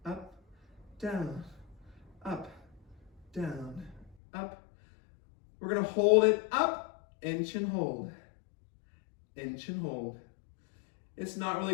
up, down, up, down, up. We're gonna hold it up, inch and hold, inch and hold. It's not really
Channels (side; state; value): right; drops out; at 4.2 s